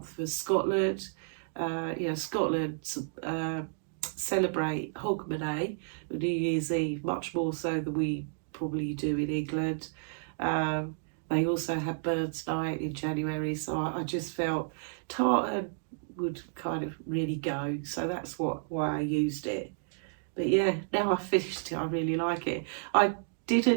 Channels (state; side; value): silent; left; digital silence